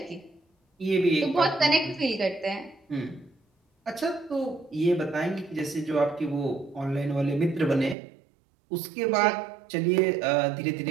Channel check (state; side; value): drops out; left; at 8.0 s